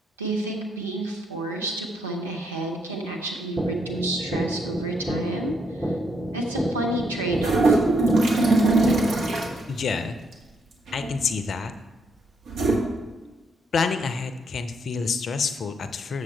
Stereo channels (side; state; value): both; normal; correlation 0.74